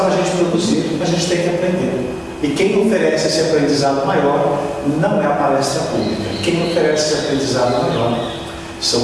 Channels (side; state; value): both; identical; correlation 1.00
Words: a gente produzir, a gente tem que aprender. E quem oferece esse aprendizado maior não é a palestra pública. Quem oferece esse aprendizado maior